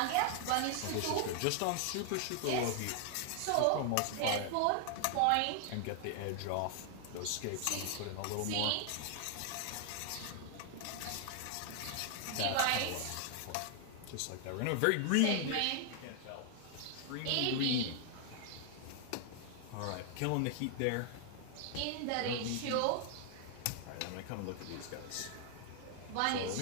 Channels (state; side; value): different; both; correlation 0.00